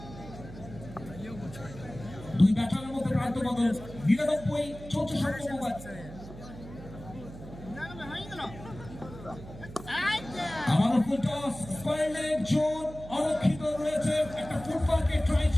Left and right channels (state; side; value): noise; right; hum, 14 dB below the sound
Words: দুই ব্যাটারের মধ্যে প্রান্ত বদল, 99 চলছে 7ম ওভার। আবারও full toss, square leg zone অরক্ষিত রয়েছে, একটা ফুটবলকে ট্রাই